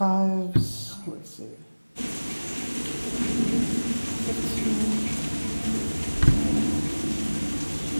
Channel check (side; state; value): both; inverted; correlation -1.00